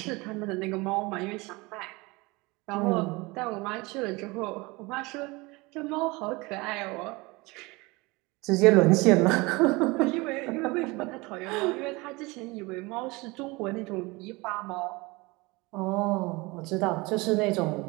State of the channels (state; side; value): quieter; left; 24.2 dB